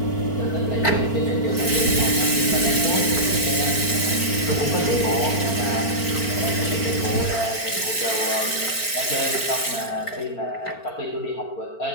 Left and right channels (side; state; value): right; late; 4.4 ms